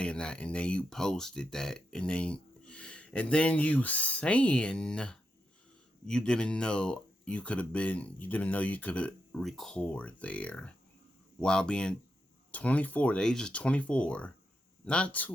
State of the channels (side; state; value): both; normal; correlation 0.85